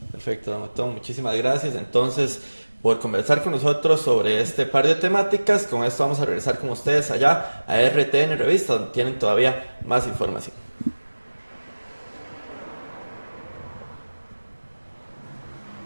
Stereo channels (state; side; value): inverted; both; correlation -1.00